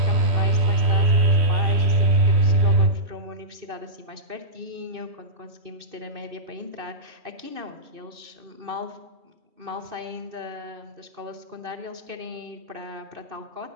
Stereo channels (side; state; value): left; late; 2.6 ms